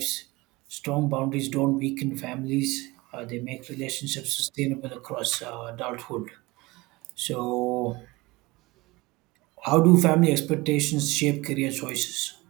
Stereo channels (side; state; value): left; quieter; 22.1 dB